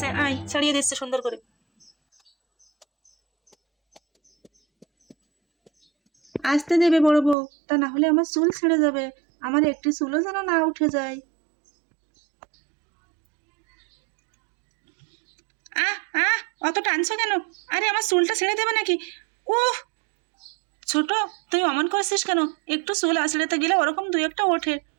আয় ছাড়িয়ে দিচ্ছে সুন্দর করে। আসতে দেবে বড় বউ, তা না হলে আমার চুল ছেড়ে যাবে, আমার একটি চুলও যেন না উঠে যায়। আহ আহ, অত টানছো কেন? আরে আমার চুলটা ছেড়ে দেবে নাকি? উহ, ছোট, তুই অমন করছিস কেন? একটু চুল আঁচড়াতে গেলে ওরকম দুই একটা ওঠে।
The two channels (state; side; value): drops out; left; at 7.4 s